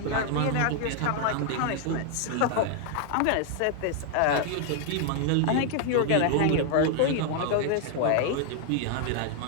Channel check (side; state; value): both; different; correlation 0.00